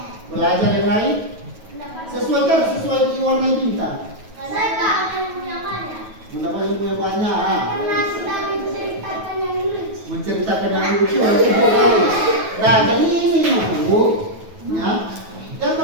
Belajar yang lain? Sesuai warna bintang. Mendapat ilmu yang banyak. Karena sudah menceritakan yang lucu. Menceritakan yang lucu. Nah, jadi ini Bu, ya.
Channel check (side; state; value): left; late; 9.3 ms